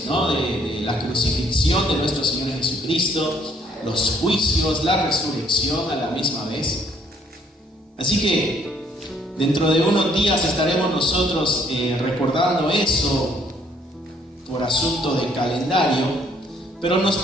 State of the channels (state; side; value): normal; both; correlation 0.65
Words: ¿no? de la crucifixión de nuestro Señor Jesucristo, los juicios, la resurrección a la misma vez. Así que dentro de unos días estaremos nosotros recordando eso por asunto de calendario, pero nos